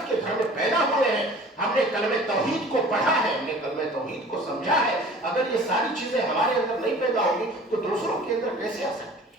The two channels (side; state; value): both; normal; correlation 0.46